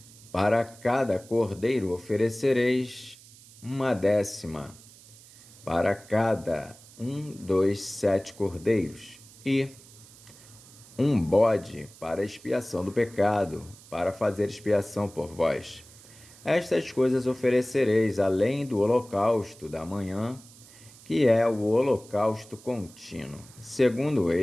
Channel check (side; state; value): right; noise; hiss, 22 dB below the sound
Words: Para cada cordeiro oferecereis 1 décima, para cada 7 cordeiros, e 1 bode para expiação do pecado, para fazer expiação por vós. Estas coisas oferecereis além do holocausto da manhã, que é o holocausto contínuo. Segundo